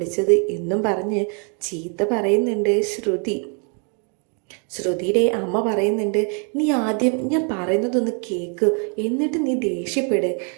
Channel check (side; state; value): left; quieter; 39.8 dB